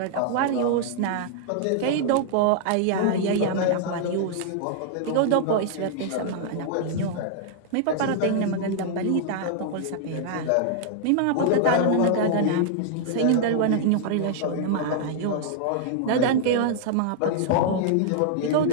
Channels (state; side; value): different; both; correlation -0.01